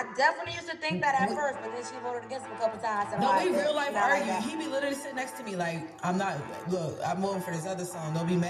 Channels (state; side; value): identical; both; correlation 1.00